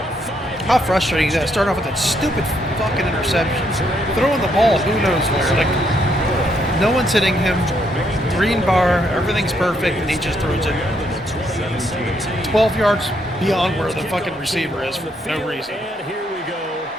5-yard How frustrating is that? Starting off with that stupid fucking interception. Throwing the ball, who knows where. Like, no one's hitting him. Green bar, everything's perfect, and he just throws it 12 yards beyond where the fucking receiver is for no reason. And here we go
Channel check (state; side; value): normal; both; correlation 0.74